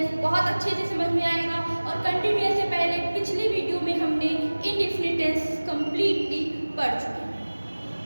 बहुत अच्छे से समझ में आएगा। और कंटिन्यूअस से पहले पिछली वीडियो में हमने इनडेफिनिट टेंस कंप्लीटली पढ़ चुके हैं,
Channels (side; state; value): both; inverted; correlation -1.00